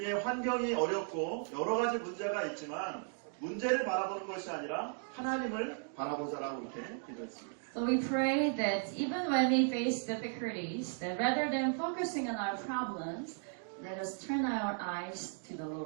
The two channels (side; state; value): left; silent; 54 dB below the other